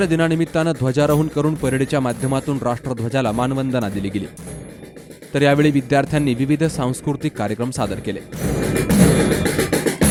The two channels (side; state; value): both; identical; correlation 1.00